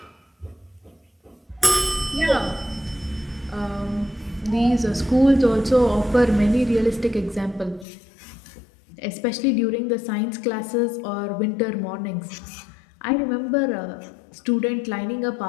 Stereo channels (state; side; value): drops out; right; at 7.9 s